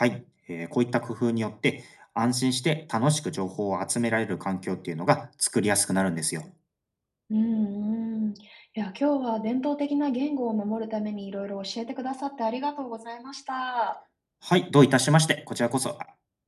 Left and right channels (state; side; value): identical; both; correlation 1.00